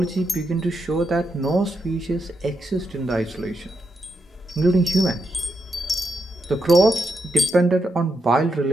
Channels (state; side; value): normal; both; correlation 0.83